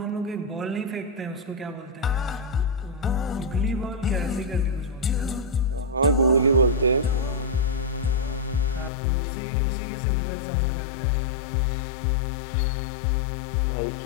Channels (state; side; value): drops out; right; at 8.9 s